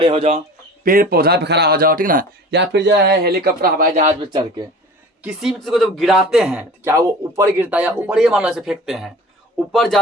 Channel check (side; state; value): both; normal; correlation 0.40